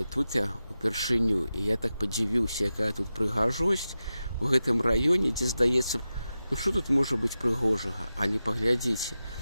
тут я упершыню, і я так падзівіўся, якая тут прыгажосць у гэтым раёне, дзе здаецца, ну што тут можа быць прыгожага, але паглядзіце,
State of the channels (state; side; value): inverted; both; correlation -0.92